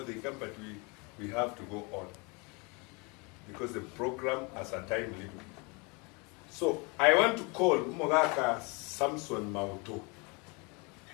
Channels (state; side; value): quieter; right; 29.7 dB